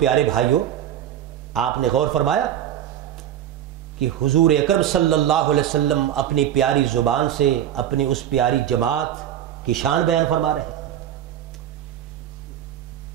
بھائیوں، آپ نے غور فرمایا کہ حضور اکرم صلی اللہ علیہ وسلم اپنی پیاری زبان سے اپنی اس پیاری جماعت کی شان بیان فرما رہے ہیں،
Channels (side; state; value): left; quieter; 10.8 dB